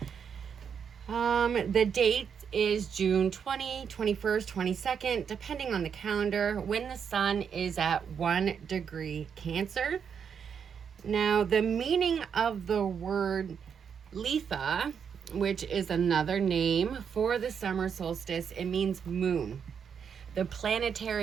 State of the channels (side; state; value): left; quieter; 7.1 dB